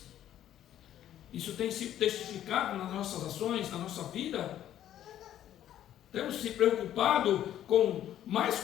Isso tem sido testificado nas nossas ações, na nossa vida. Temos se preocupado mais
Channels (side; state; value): right; quieter; 11.5 dB